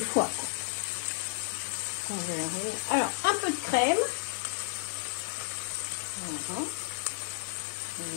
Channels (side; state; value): right; silent; digital silence